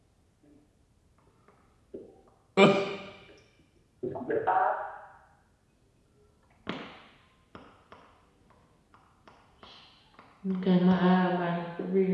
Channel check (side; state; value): both; identical; correlation 1.00